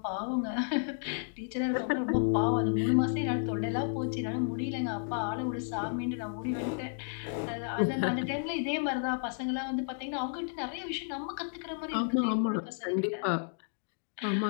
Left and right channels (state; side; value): silent; right; digital silence